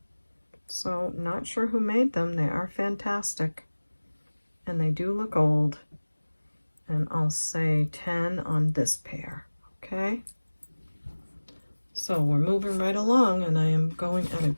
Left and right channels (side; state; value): both; inverted; correlation -1.00